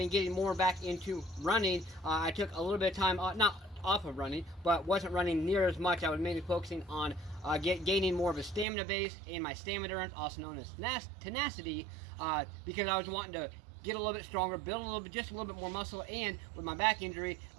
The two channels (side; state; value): left; drops out; at 8.7 s